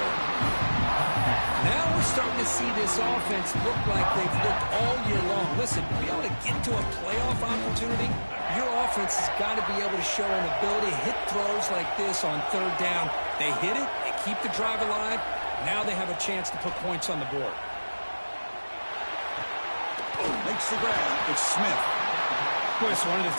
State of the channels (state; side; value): inverted; both; correlation -1.00